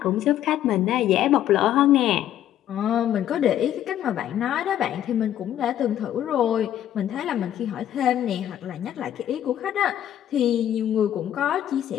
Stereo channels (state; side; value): quieter; right; 11.3 dB